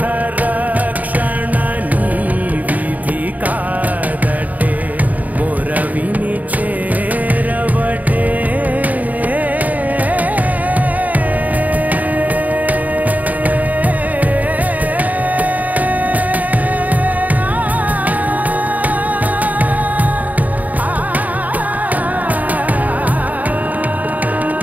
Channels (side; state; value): left; late; 0.076 ms